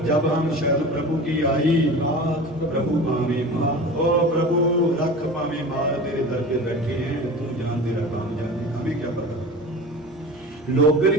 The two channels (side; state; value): both; normal; correlation 0.34